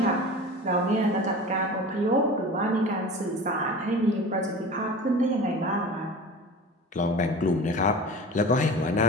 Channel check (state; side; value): normal; both; correlation 0.36